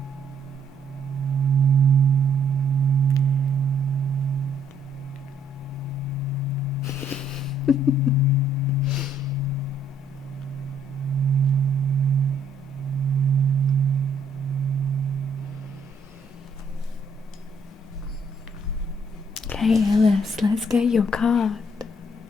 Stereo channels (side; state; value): both; normal; correlation 0.67